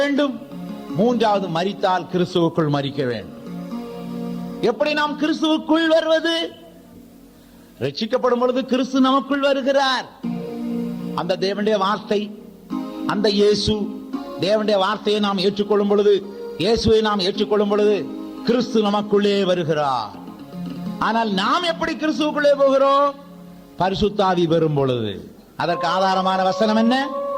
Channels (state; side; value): identical; both; correlation 1.00